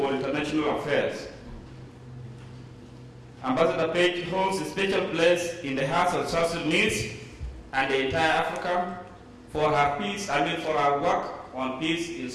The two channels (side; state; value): both; identical; correlation 1.00